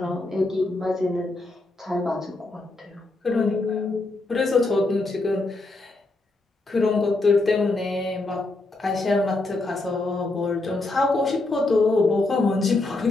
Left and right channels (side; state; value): right; quieter; 3.0 dB